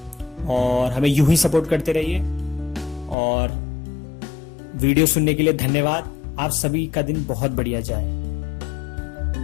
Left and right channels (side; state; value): right; drops out; at 3.2 s